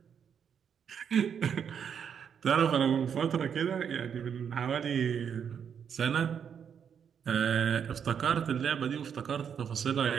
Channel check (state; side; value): quieter; left; 7.7 dB